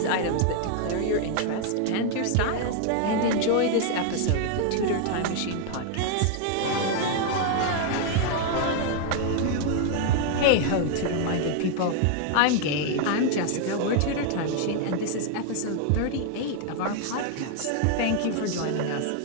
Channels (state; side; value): different; both; correlation 0.00